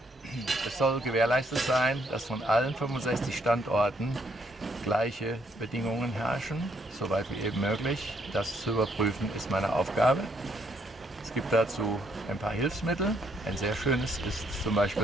es soll gewährleistet sein, dass von allen 65 Standorten gleiche Bedingungen herrschen, soweit wie eben möglich. Das zu überprüfen ist meine Aufgabe. Es gibt dazu ein paar Hilfsmittel. Ein sehr schönes ist zum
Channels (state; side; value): normal; both; correlation 0.72